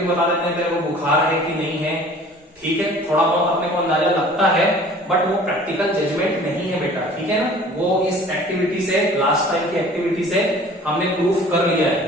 बता देते हैं तेरे को बुखार है कि नहीं है. ठीक है, थोड़ा बहुत अपने को अंदाजा लगता है, बट वो प्रैक्टिकल जजमेंट नहीं है बेटा. ठीक है ना, वो इस एक्टिविटी से, लास्ट टाइम की एक्टिविटी से हमने प्रूफ कर लिया है.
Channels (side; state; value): both; normal; correlation 0.48